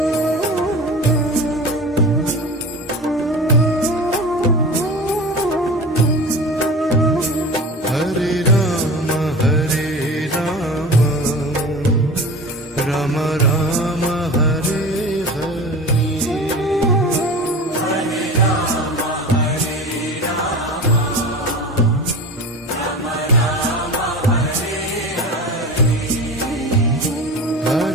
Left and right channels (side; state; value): both; normal; correlation 0.33